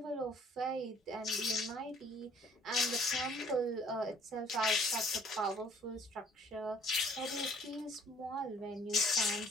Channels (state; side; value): normal; both; correlation 0.58